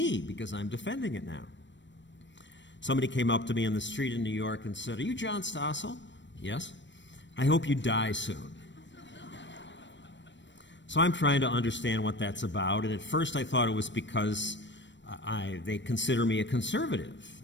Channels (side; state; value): right; late; 0.53 ms